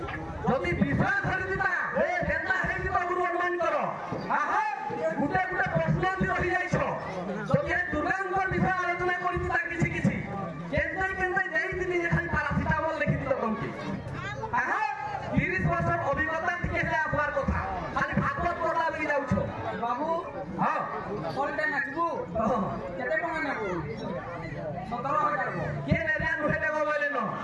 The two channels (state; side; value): identical; both; correlation 1.00